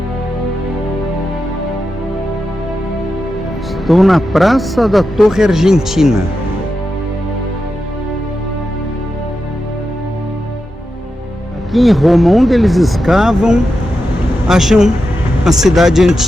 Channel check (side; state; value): both; normal; correlation 0.89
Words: Estou na Praça da Torre Argentina. Aqui em Roma, onde eles escavam, acham a cidade